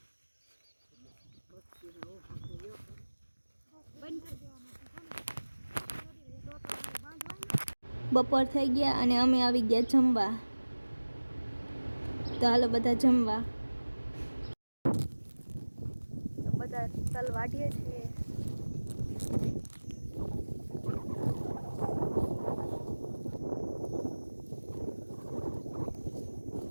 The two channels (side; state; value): both; inverted; correlation -1.00